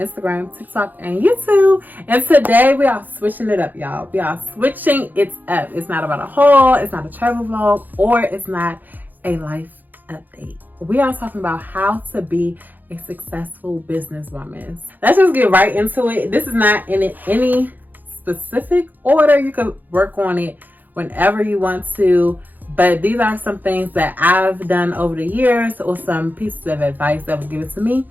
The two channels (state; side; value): late; left; 0.085 ms